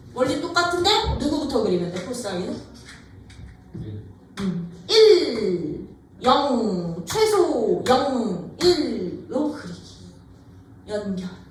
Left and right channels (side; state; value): both; identical; correlation 1.00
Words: 원리 똑같은데 누구부터 그리면 돼? 코사인은 1 0 최소 0 1로 그리기. 연결